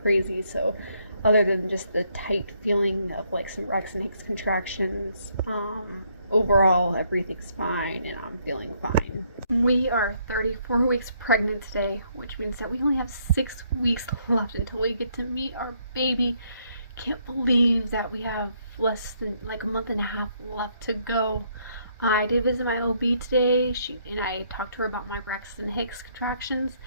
crazy, so other than just the tight feeling of like some Braxton Hicks contractions, overall everything's fine and I'm feeling fine. We are 34 weeks pregnant today, which means that we only have 6 weeks left until we get to meet our baby. Can't believe that we have less than like a month and a half left to go. I did visit my OB today. I talked to her about my Braxton Hicks contractions,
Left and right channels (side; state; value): both; inverted; correlation -0.71